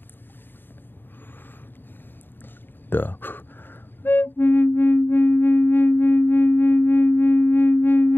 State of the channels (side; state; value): right; late; 0.097 ms